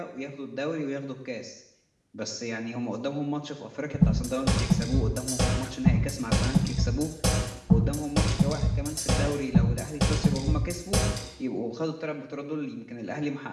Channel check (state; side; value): identical; both; correlation 1.00